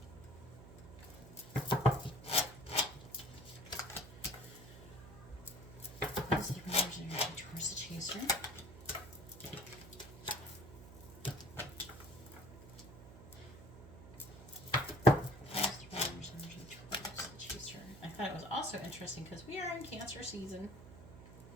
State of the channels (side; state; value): right; noise; hum, 16 dB below the sound